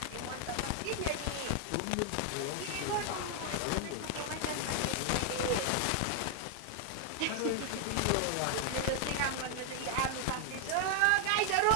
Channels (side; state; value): both; different; correlation 0.00